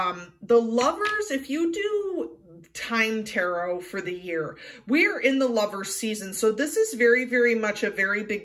Lovers, if you do time tarot for the year, we're in the Lovers season. So this is very, very much a very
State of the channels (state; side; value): identical; both; correlation 1.00